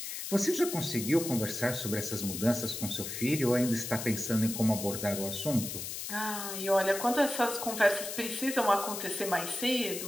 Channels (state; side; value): noise; left; hiss, 6 dB below the sound